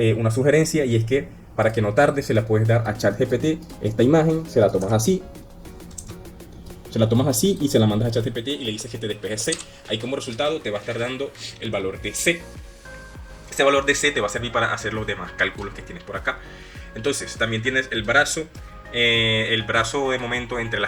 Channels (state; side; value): identical; both; correlation 1.00